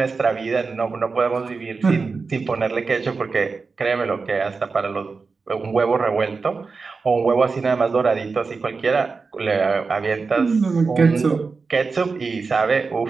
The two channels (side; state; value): left; quieter; 4.5 dB